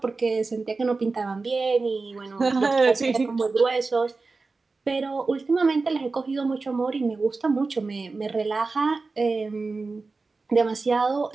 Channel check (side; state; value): left; quieter; 3.9 dB